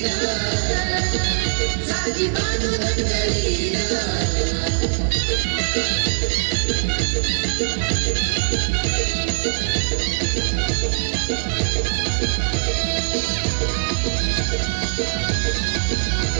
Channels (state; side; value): silent; left; 61 dB below the other